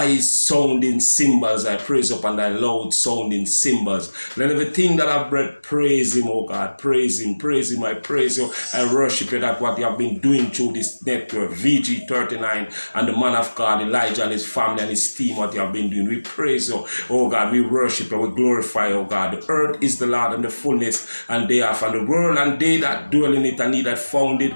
sounding cymbals. I praise you upon thy loud sounding cymbals. Let everything that I've breath praise him, oh God. Praise him, praise him. I praise you. I worship you that what you have been doing through this network, VG39, and the man of God, Elijah, and his family and his team, what you have been doing. We praise you, oh God. We worship you. We glorify you, oh God. The earth is the Lord and the fullness and thereof, and the world and they that dwell in it, and he that founded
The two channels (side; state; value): both; inverted; correlation -1.00